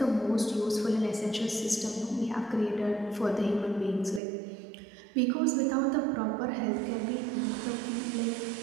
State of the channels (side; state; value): left; drops out; at 4.2 s